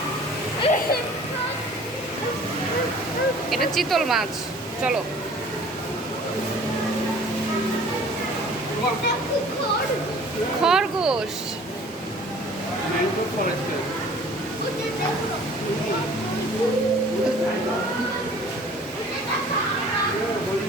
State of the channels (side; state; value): both; normal; correlation 0.49